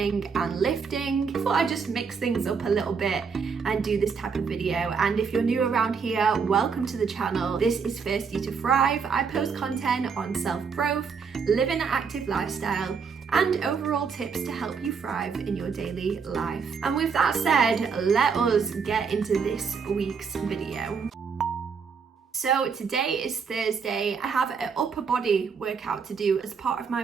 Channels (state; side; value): quieter; left; 5.8 dB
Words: and lifting. I thought I'd just mix things up a little bit and do this type of video. And if you're new around here, welcome to the channel. This is Thirsty to Thrive. I post content on self-growth, living an active lifestyle, and overall tips to help you thrive in your daily life. And with that said, let us get into this week's video. So today is Thursday. I have an upper body workout to do as part of my